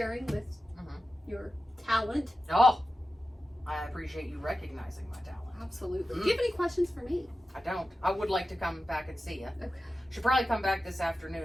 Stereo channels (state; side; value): normal; both; correlation 0.93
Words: with your talent. Oh, I appreciate you recognizing my talent. Absolutely. Do you have any questions for me? I don't. I would like to come back and see you. Okay. Should probably come back this afternoon